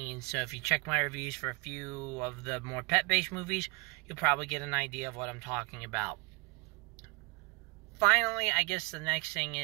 So if you check my reviews for a few of the more pet-based movies, you'll probably get an idea of what I'm talking about. Finally, I guess the next thing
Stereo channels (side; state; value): left; quieter; 30.0 dB